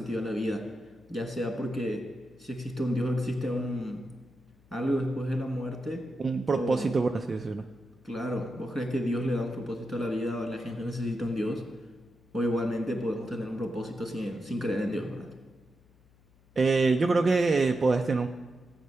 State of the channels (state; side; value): noise; left; hum, 29 dB below the sound